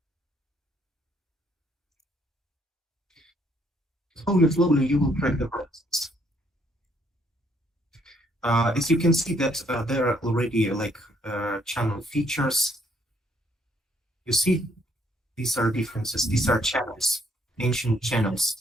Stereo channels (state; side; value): normal; both; correlation 0.68